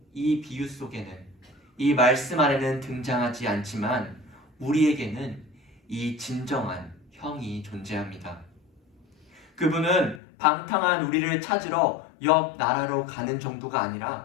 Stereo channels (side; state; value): right; drops out; at 10.2 s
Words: 이 비유 속에는 이 말씀 안에는 등장하지 않지만 우리에게는 이 진정한 형이 존재합니다. 그분은 방탕한 우리를 찾으러 옆 나라로 가는 정도가